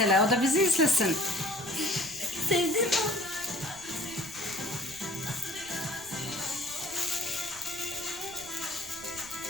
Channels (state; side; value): noise; right; rumble, 20 dB below the sound